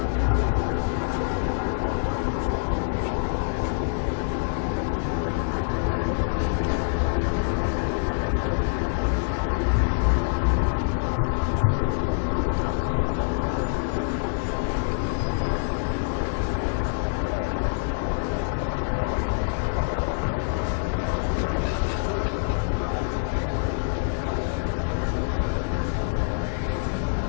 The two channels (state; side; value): silent; right; 55 dB below the other